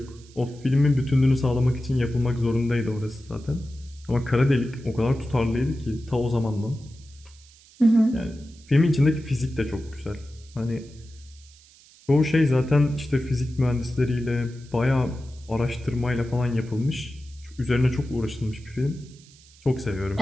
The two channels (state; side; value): noise; right; hiss, 25 dB below the sound